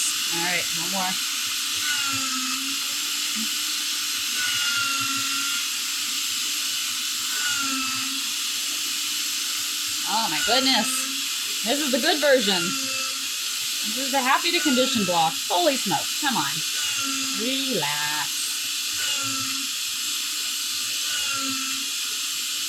All right, one more. Oh my goodness. This is the good version. This is the happy to condition block. Holy smokes. Come on. Relax.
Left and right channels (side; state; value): both; identical; correlation 1.00